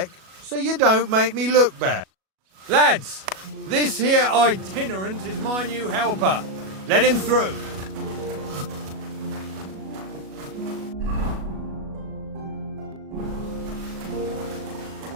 so you don't make me look bad. Lads, this here itinerant is my new helper. Let him through.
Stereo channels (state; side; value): late; left; 37 ms